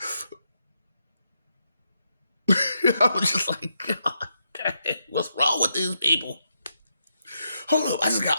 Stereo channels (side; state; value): both; inverted; correlation -0.81